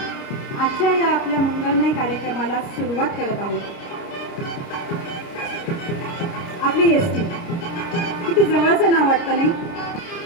आजच्या या आपल्या मंगलमय कार्यक्रमाला सुरुवात करत आहोत। आपली एसटी किती जवळचं नाव वाटतं नाही?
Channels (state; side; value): late; right; 29 ms